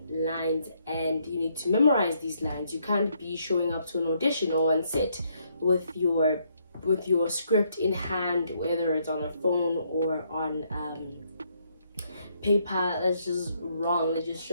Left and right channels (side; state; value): both; inverted; correlation -0.73